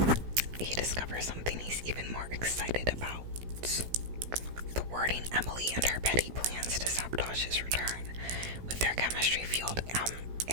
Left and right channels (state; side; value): late; left; 16 ms